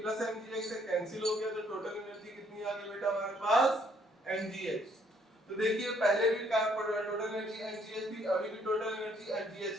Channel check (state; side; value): normal; both; correlation 0.66